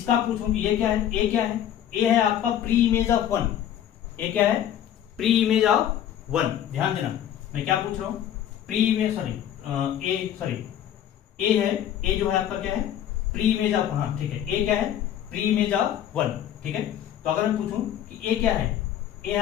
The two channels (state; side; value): quieter; right; 10.7 dB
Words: पूछूं कि ये क्या है, ए क्या है, ए है आपका प्री इमेज ऑफ 1, ए क्या है प्री इमेज ऑफ 1। ध्यान देना मैं क्या पूछ रहा हूं, प्री इमेज, ए है, ए जो है आपका क्या है प्री इमेज ऑफ, हाँ ठीक है, ए क्या है प्री इमेज ऑफ 1। ठीक है, तो अगर मैं पूछूं कि ए क्या है, ए है